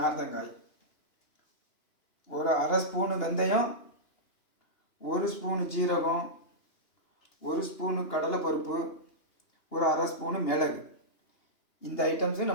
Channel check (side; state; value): right; late; 2.9 ms